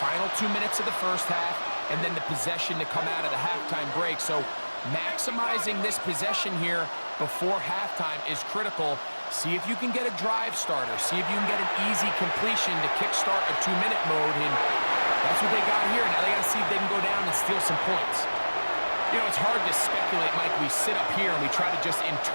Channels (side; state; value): both; inverted; correlation -1.00